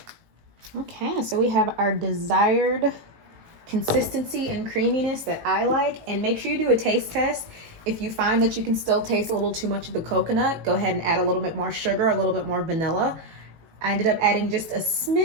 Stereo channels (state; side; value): late; left; 18 ms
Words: Okay, so we have our desired consistency and creaminess that I like. And make sure you do a taste test. If you find that you can still taste a little too much of the coconut, go ahead and add a little bit more sugar, a little bit more vanilla. I ended up adding just a